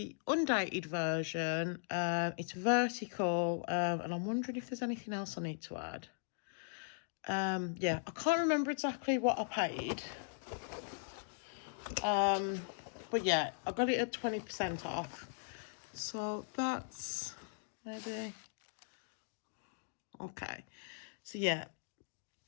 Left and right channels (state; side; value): silent; right; digital silence